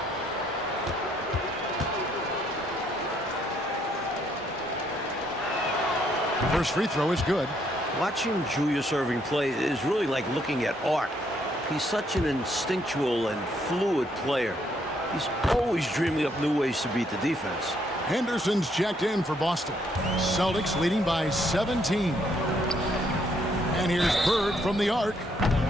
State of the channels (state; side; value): normal; both; correlation 0.71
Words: The first free throw is good. Watching Julius Erving play is really like looking at art. He's such an instinctual and fluid player. He's always dreaming up new ways to beat the defense. Henderson's checked in for Boston. Celtics leading by 17. And here's Bird from the arc.